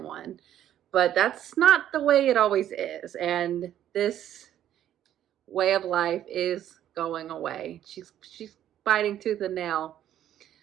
one. But that's not the way it always is. And this way of life is going away. She's fighting tooth and nail.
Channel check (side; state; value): left; quieter; 11.3 dB